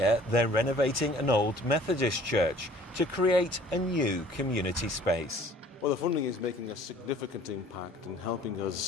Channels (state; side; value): normal; both; correlation 0.53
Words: they're renovating an old Methodist church to create a new community space. Well, the funding is making a significant impact and helping